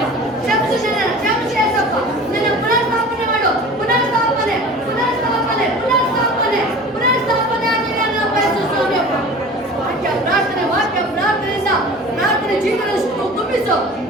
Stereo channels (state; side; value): normal; both; correlation 0.39